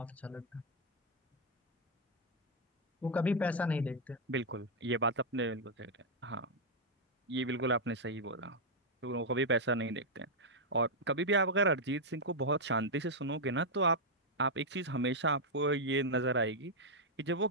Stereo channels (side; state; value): both; normal; correlation -0.02